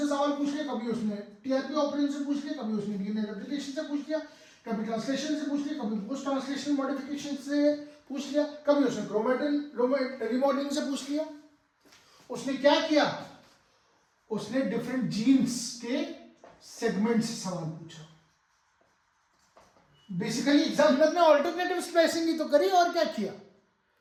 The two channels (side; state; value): both; identical; correlation 1.00